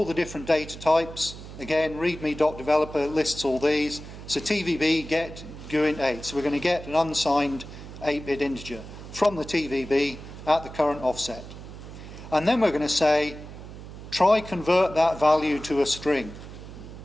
the different data types. Again, readme.developer lists all these. So TVB get GUINT 8. So we're going to get an unsigned 8-bit integer from the TVB at the current offset. And then we're going to say, try convert that value to a string.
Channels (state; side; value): noise; right; hum, 13 dB below the sound